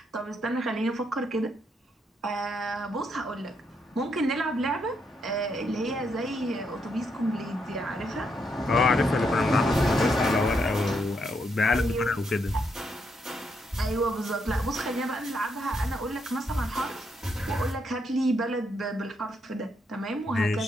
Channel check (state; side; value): normal; both; correlation 0.78